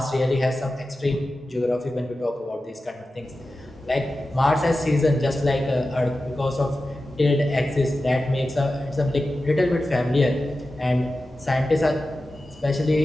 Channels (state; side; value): normal; both; correlation 0.93